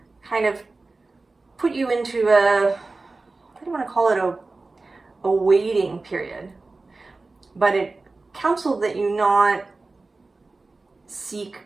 kind of put you into I don't want to call it a waiting period, but it counseled that you not seek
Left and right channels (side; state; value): left; quieter; 3.5 dB